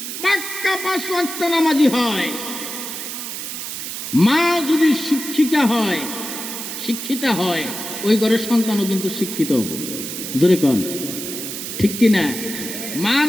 পাক্কা 5 ওয়াক্ত নামাজি হয়, মা যদি শিক্ষিতা হয়, ওই ঘরের সন্তানও কিন্তু শিক্ষিত হবে। জোরে কোন ঠিক কিনা? মা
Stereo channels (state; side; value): noise; right; hiss, 7 dB below the sound